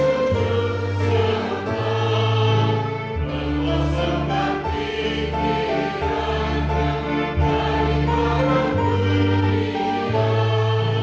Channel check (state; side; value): identical; both; correlation 1.00